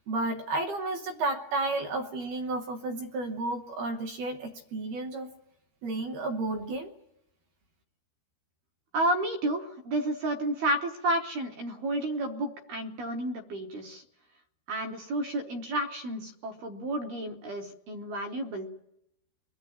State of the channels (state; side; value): late; left; 13 ms